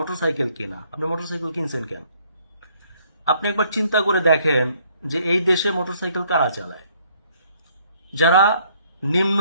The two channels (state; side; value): inverted; both; correlation -0.65